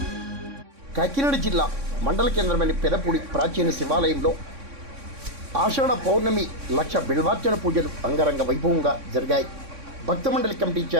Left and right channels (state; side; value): late; left; 3.6 ms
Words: కాకినాడ జిల్లా మండల కేంద్రమైన పెదపూడి ప్రాచీన శివాలయంలో ఆషాఢ పౌర్ణమి లక్ష బిల్వార్చన పూజలు అంగరంగ వైభవంగా జరిగాయి. భక్త మండలి కమిటీ